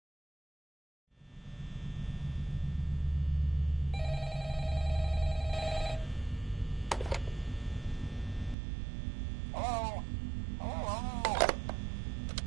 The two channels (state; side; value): drops out; left; at 8.6 s